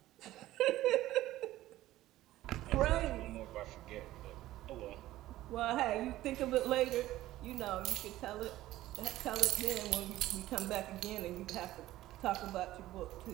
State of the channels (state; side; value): quieter; left; 15.5 dB